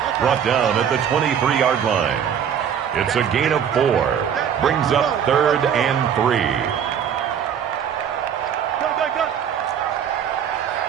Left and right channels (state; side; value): quieter; left; 8.4 dB